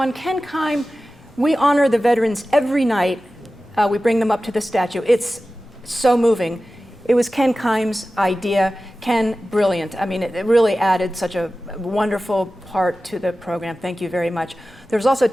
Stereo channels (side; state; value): both; normal; correlation 0.95